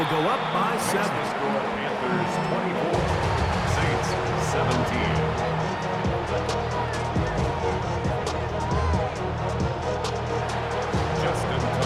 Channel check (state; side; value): identical; both; correlation 1.00